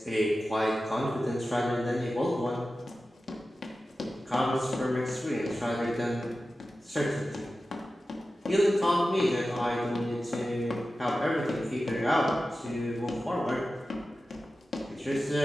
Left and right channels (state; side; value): normal; both; correlation 0.94